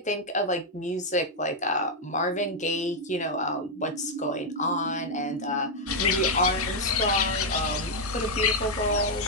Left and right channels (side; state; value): both; normal; correlation -0.01